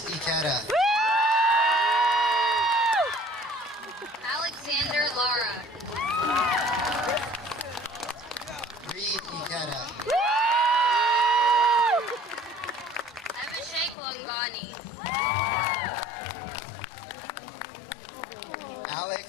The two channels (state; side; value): drops out; right; at 14.0 s